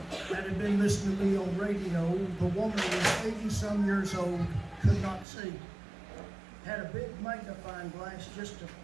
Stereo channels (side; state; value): left; drops out; at 5.2 s